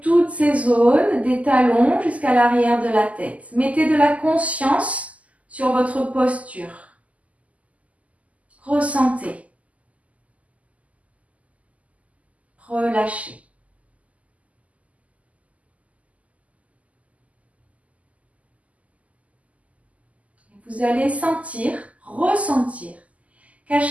toutes ces zones, des talons jusqu'à l'arrière de la tête. Mettez de la conscience sur votre posture. Ressentez. Relâchez. Vous allez sentir, ressentir qu'à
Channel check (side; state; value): left; late; 0.070 ms